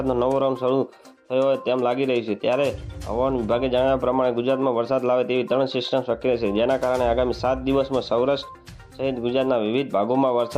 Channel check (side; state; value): both; identical; correlation 1.00